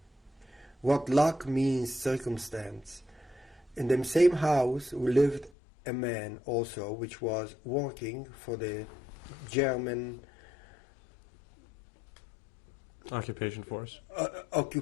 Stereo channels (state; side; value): drops out; right; at 5.5 s